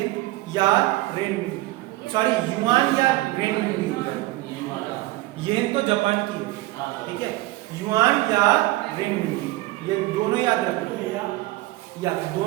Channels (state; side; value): quieter; left; 18.7 dB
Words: या रेनमिनबी, सॉरी युआन या रेनमिनबी हो जाएगा। येन तो जापान की है, ठीक है, युआन या रेनमिनबी, ये दोनों याद रखना। या